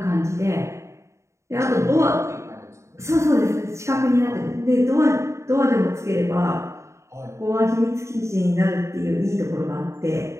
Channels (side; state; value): left; late; 0.14 ms